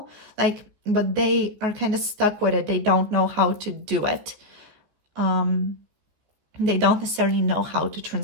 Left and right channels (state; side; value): late; left; 14 ms